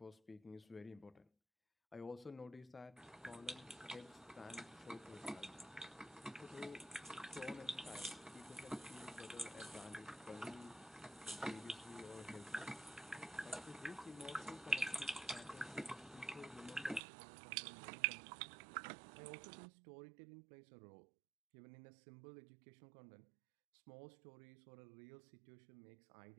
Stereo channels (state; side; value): drops out; left; at 17.0 s